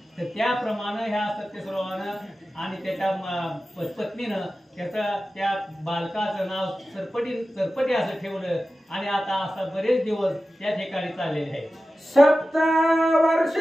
तर त्याप्रमाणे ह्या सत्यस्रावानं आणि त्याच्या पत्नीनं त्या बालकाचं नाव चरपटी असं ठेवलं आणि आता असं बरेच दिवस त्या ठिकाणी चाललेले आहे। 7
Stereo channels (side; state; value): both; normal; correlation 0.94